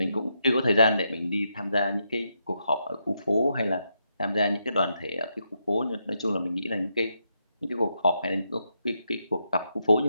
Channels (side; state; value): both; inverted; correlation -0.81